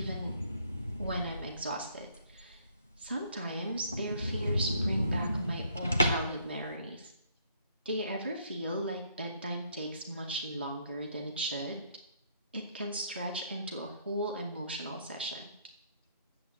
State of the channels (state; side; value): inverted; both; correlation -0.67